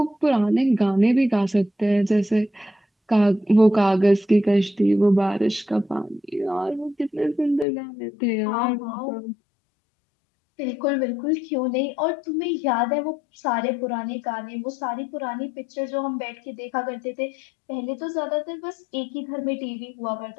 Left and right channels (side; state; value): right; drops out; at 7.7 s